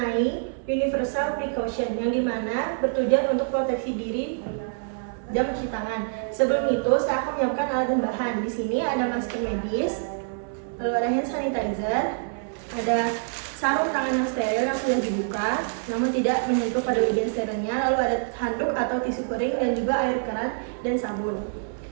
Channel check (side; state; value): left; silent; 61 dB below the other